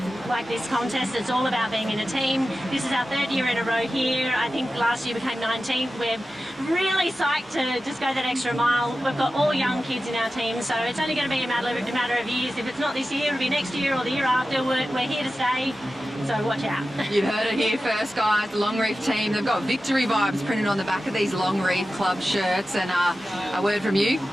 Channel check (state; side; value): normal; both; correlation 0.94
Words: Like this contest, it's all about being in a team. This is our 3rd year in a row here. I think last year we came 19th. We're really psyched to just go that extra mile. We've got all young kids in our team, so it's only going to be a matter of years. If it's not this year, it'll be next year or the year after. We're here to stay, so watch out. You've heard it here first, guys. The Longreef team, they've got victory vibes printed on the back of these Longreef Club shirts. And a word from you.